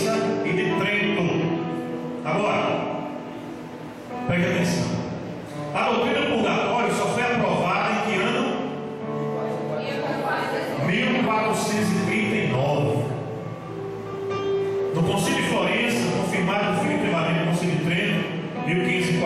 e de Trento. Agora, preste atenção. A doutrina do purgatório só foi aprovada em que ano? 1439. No Concílio de Florença, confirmado definitivamente no Concílio de Trento,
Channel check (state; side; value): identical; both; correlation 1.00